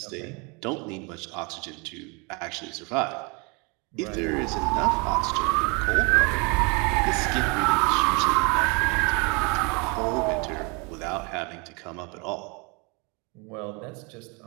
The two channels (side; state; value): left; quieter; 30.8 dB